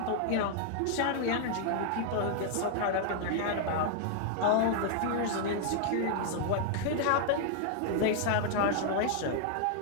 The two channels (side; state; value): both; different; correlation 0.00